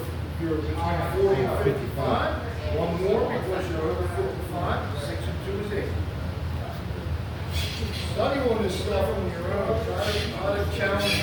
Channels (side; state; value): both; identical; correlation 1.00